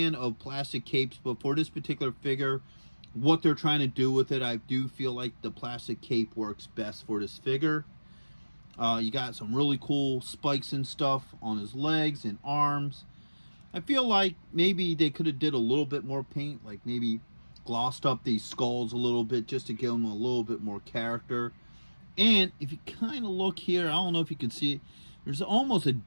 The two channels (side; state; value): both; inverted; correlation -1.00